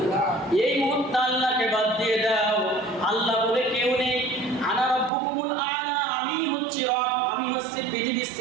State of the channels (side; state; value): left; drops out; at 5.1 s